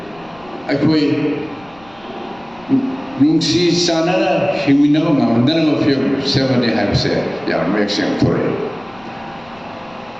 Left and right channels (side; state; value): left; noise; rumble, 27 dB below the sound